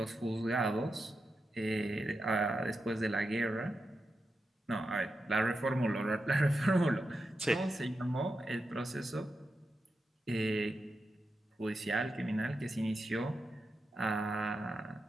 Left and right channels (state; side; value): normal; both; correlation 0.88